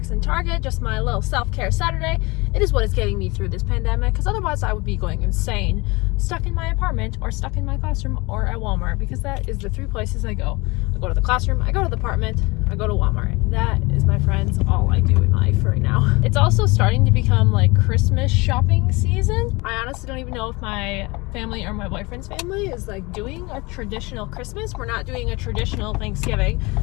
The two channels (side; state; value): right; quieter; 24.7 dB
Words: and Target, just my little self-care Saturday. It is what is getting me through this pandemic, because otherwise I would be going insane, stuck in my apartment or stuck in my classroom or at Walmart, because that is the 3 places I go. I go to the classroom, I go to the apartment, I go to Walmart. That is, my friends, all I do in life right now. It's also starting to become like Christmas shopping season. I honestly don't even know if my family or my boyfriend's family is like doing a traditional Christmas. We're not doing a traditional Thanksgiving,